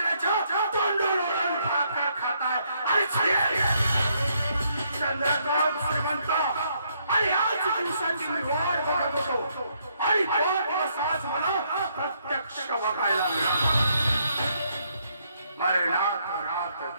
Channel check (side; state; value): both; inverted; correlation -0.73